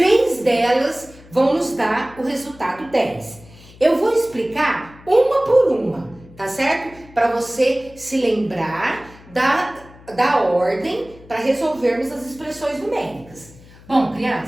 delas vão nos dar o resultado 10. Eu vou explicar uma por uma, tá certo? Para você se lembrar da ordem para resolvermos as expressões numéricas. Bom,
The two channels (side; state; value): left; noise; hum, 22 dB below the sound